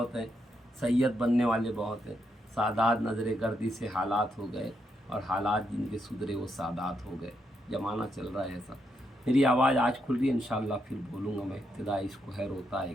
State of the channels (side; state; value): both; normal; correlation 0.80